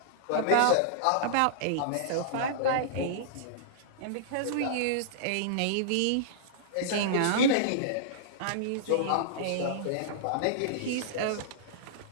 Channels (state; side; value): different; both; correlation -0.02